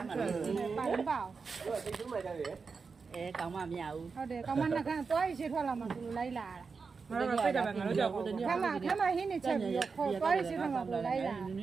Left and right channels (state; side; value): quieter; left; 5.0 dB